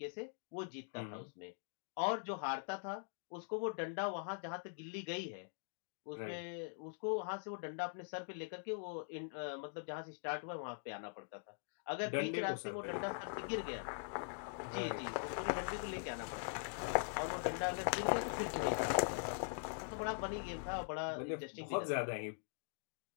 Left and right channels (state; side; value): silent; right; digital silence